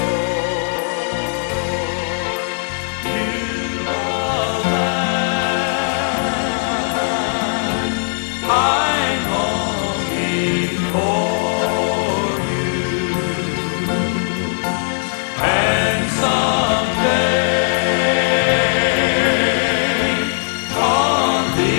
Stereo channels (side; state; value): right; silent; digital silence